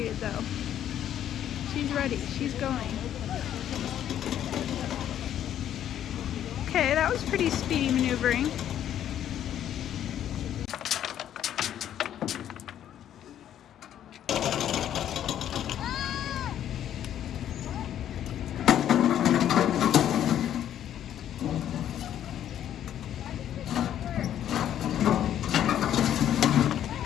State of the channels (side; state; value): right; quieter; 10.7 dB